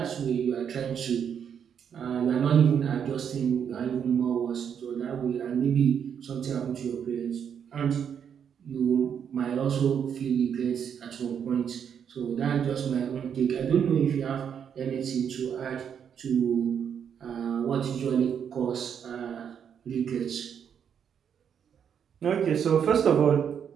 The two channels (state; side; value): quieter; left; 8.0 dB